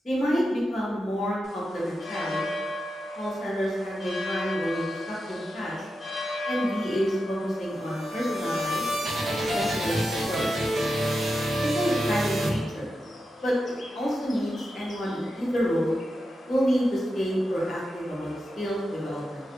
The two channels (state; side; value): normal; both; correlation 0.89